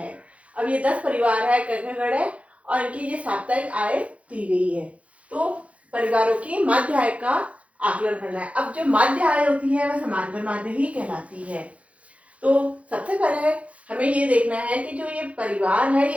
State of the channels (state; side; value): late; left; 0.064 ms